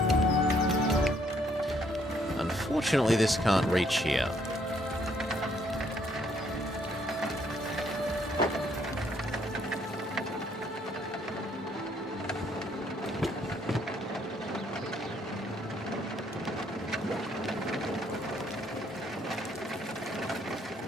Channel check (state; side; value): normal; both; correlation 0.68